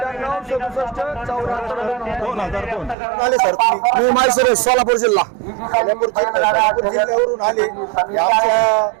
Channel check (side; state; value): left; drops out; at 3.0 s